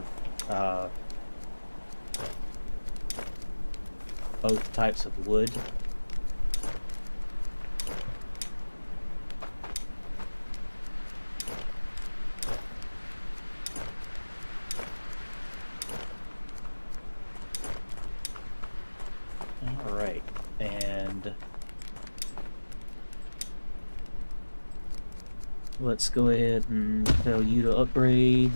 both types of wood. Alright, and let's go ahead and tell you to upgrade.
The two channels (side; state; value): both; inverted; correlation -1.00